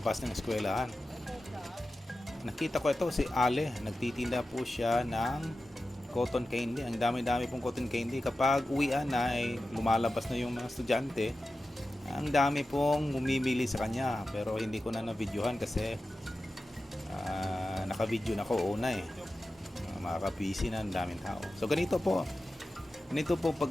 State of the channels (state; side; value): normal; both; correlation 0.93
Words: ng eskwelahan. Nakita ko ito, si Ale, nagtitinda po siya ng cotton candy. Ang dami-dami pong cotton candy. Kapag uwian na ay lumalabas na yung mga estudyante, ang dami pong bumibili sa kanya, pero hindi ko na na-videohan kasi naka-video na ko una makaka-busy na ang daming tao. So ganito po